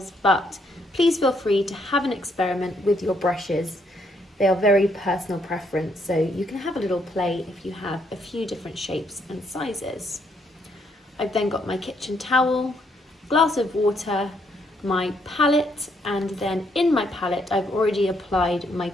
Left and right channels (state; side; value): normal; both; correlation 0.72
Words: But please feel free to have an experiment with your brushes. They are very personal preference, so you can have a little play if you have a few different shapes and sizes. I've then got my kitchen towel, glass of water, my palette, and then in my palette I've already applied my